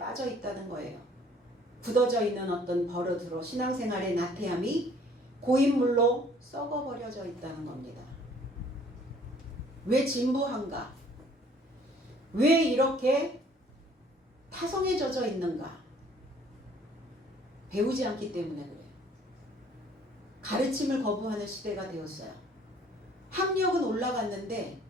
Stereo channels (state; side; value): normal; both; correlation 0.57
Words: 있다는 거예요. 굳어져 있는 어떤 버릇으로 신앙생활의 나태함이 고인물로 썩어버려져 있다는 겁니다. 왜 진부한가? 왜 이렇게 타성에 젖어 있는가? 배우지 않기 때문에 그래요. 가르침을 거부하는 시대가 되었어요. 학력은 올라갔는데